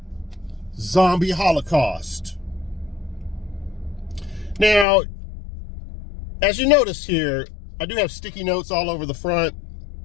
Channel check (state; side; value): drops out; right; at 4.9 s